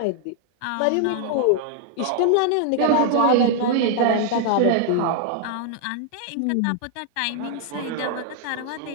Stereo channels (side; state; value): both; different; correlation 0.00